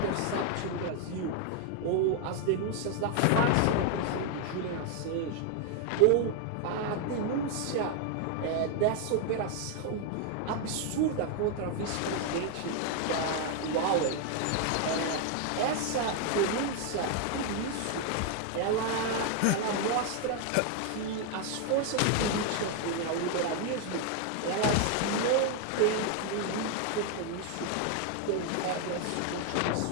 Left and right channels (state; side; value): different; both; correlation 0.00